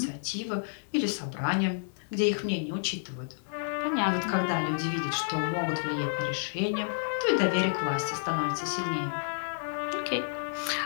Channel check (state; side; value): silent; right; digital silence